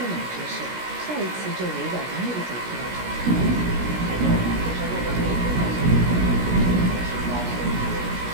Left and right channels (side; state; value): left; late; 16 ms